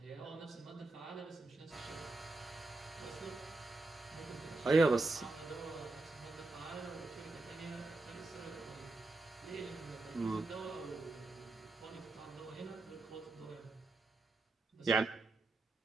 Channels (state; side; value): quieter; left; 3.2 dB